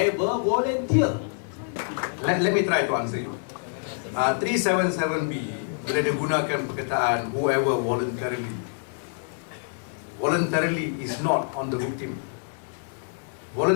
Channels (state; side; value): silent; right; digital silence